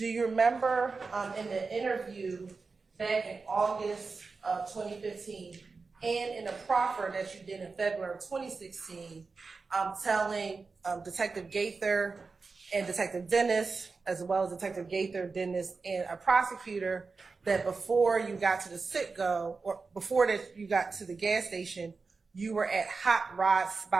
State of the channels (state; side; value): quieter; left; 4.4 dB